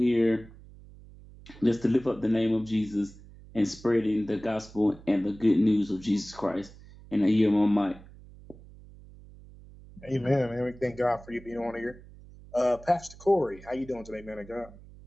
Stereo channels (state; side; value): noise; right; hum, 20 dB below the sound